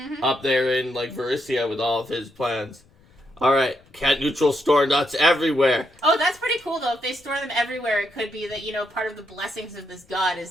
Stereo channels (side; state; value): left; noise; rumble, 30 dB below the sound